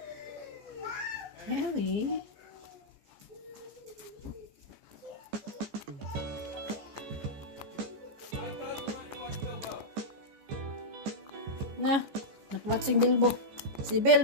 Harry. Na, nakwatsing Bilbo. Si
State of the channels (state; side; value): late; left; 14 ms